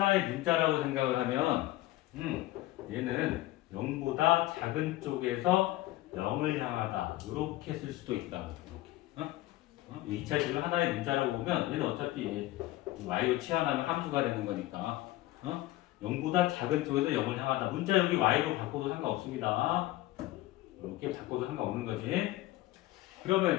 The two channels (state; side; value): quieter; right; 17.0 dB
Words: 문자라고 생각을 하면 얘는 0보다 작은 쪽에서 0을 향하다. 이렇게 쓸 수도 있다고. 이렇게. 2차식을 하나의 문자라고 보면 얘는 어차피 y로 치환하면 함수가 되는 거니까 0보다 작은 쪽에서 0을 향하다. 문자 여기 y로 바꿔도 상관없습니다. 이렇게 바꿔도 상관없는 거지.